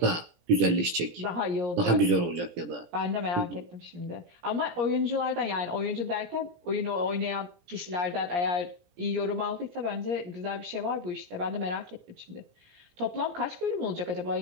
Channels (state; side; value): late; left; 17 ms